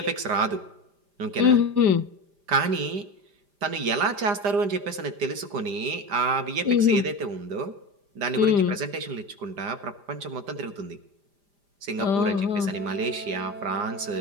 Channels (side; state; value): left; late; 5.0 ms